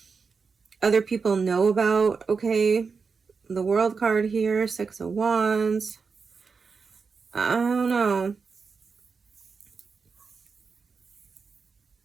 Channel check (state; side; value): quieter; left; 5.1 dB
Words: other people know about. Okay, the World card here, Six of Wands. I don't know.